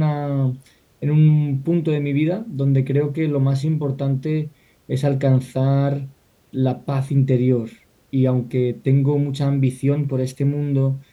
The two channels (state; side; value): identical; both; correlation 1.00